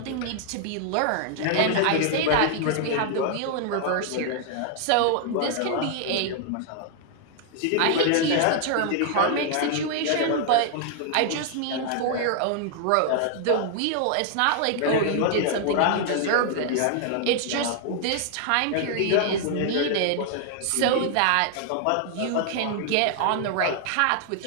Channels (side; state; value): both; different; correlation 0.00